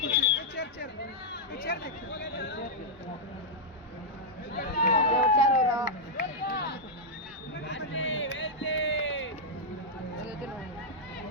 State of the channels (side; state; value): both; normal; correlation -0.06